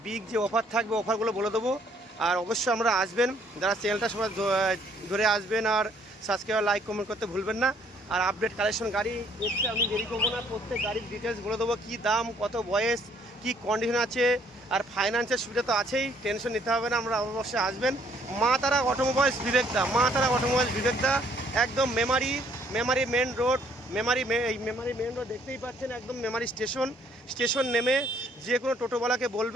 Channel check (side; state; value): both; normal; correlation 0.64